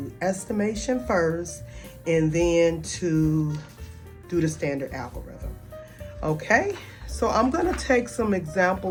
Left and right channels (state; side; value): identical; both; correlation 1.00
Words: estimation first and then to do the standard algorithm. Okay, so I'm going to take some